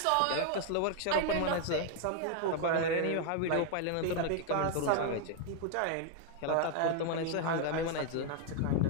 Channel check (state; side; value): different; both; correlation 0.00